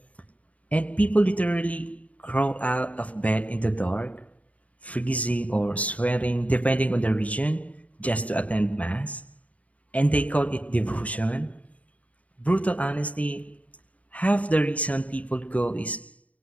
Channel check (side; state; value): right; late; 0.068 ms